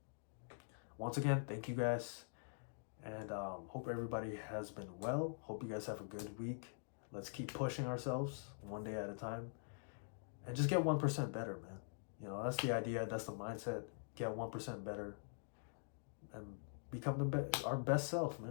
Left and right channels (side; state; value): right; silent; digital silence